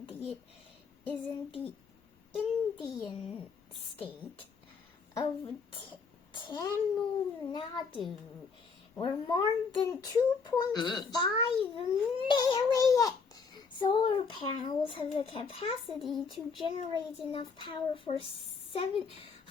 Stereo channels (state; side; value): quieter; right; 5.2 dB